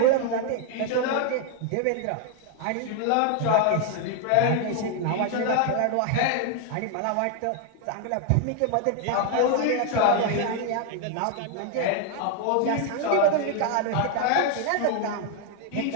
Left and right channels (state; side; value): different; both; correlation 0.00